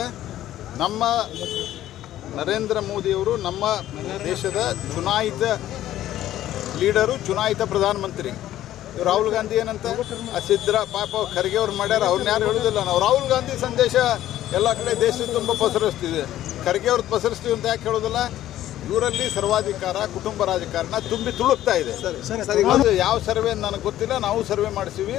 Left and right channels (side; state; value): right; quieter; 13.2 dB